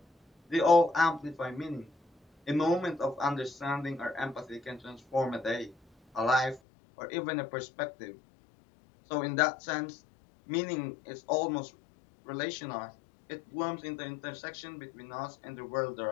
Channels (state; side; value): drops out; right; at 6.6 s